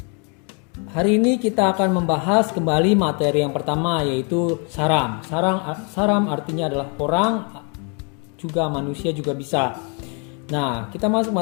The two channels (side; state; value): right; quieter; 36.5 dB